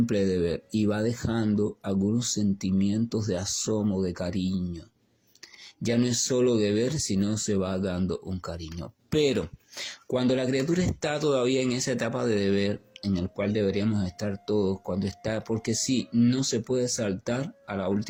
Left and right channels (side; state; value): both; identical; correlation 1.00